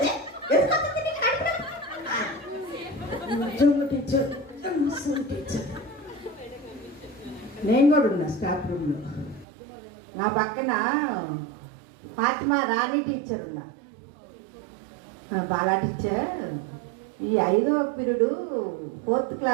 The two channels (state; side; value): drops out; left; at 9.5 s